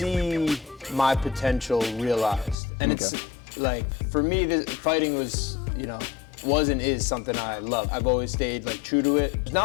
my potential realized. And it's like, for me, fighting was, you know, was and is something I love. I've always stayed like true to it. There's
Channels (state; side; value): drops out; right; at 2.6 s